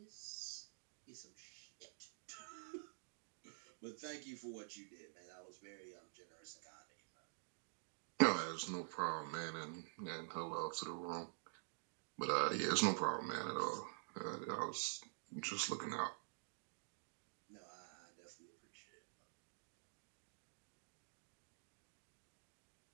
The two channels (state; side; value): silent; left; digital silence